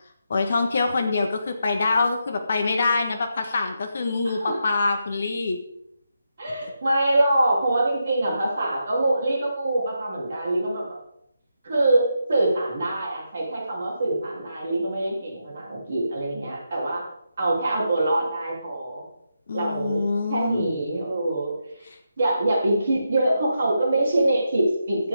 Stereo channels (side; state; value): both; inverted; correlation -0.84